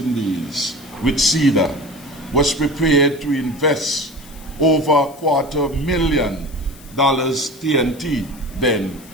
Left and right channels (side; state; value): left; noise; hiss, 22 dB below the sound